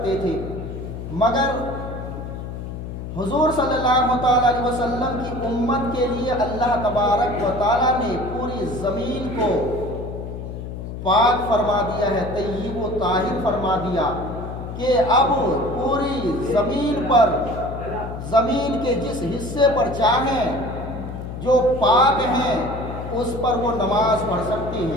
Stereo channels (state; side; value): noise; left; hum, 8 dB below the sound